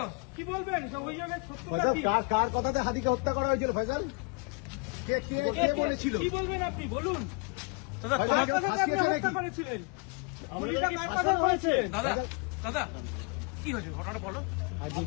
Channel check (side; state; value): right; quieter; 32.9 dB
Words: কি বলবেন সব অভিযোগের সত্যতা কি? কার কথাতে হাতিকে হত্যা করা হয়েছিল ফয়সাল? কে বলেছিল? কি বলবেন আপনি বলুন? দাদা ফয়সাল, তোমার কেউ কার কথাতে আপনি ফাঁসিয়েছে হত্যা নাকি? করেছিলেন? গুলিটা কার কথায় হয়েছে? দাদা দাদা কি হয়েছে ঘটনাটা বলো। আজই